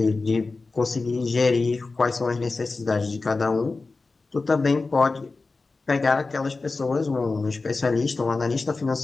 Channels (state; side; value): quieter; right; 3.8 dB